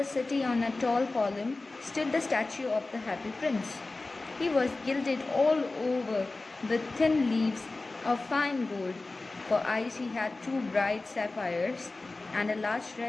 city on a tall column stood the statue of the Happy Prince. He was gilded all over with thin leaves of fine gold. For eyes he had two bright sapphires, and a large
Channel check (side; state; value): right; quieter; 3.3 dB